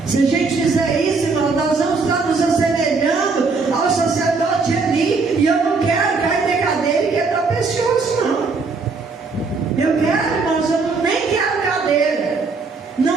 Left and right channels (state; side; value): quieter; left; 4.3 dB